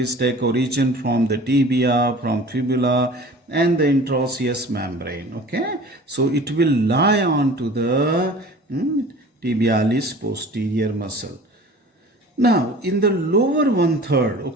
take origin from the tibia, from fibula, and the interosseous membrane. Okay, so it will lie on to the tibialis posterior muscle. Now, in the lower one third,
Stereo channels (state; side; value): normal; both; correlation 0.43